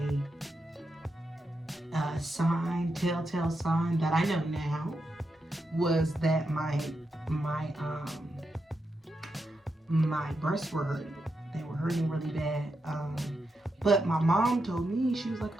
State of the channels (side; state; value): both; normal; correlation 0.86